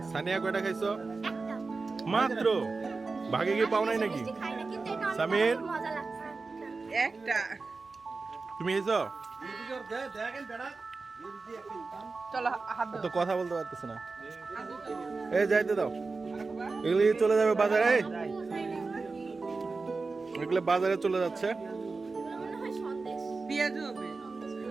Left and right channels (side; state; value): left; quieter; 4.0 dB